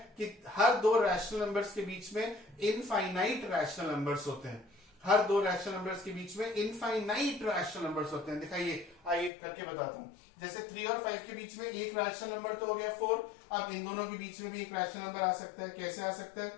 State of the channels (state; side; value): drops out; right; at 9.3 s